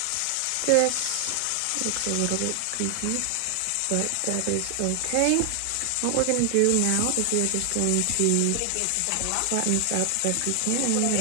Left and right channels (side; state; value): both; different; correlation 0.00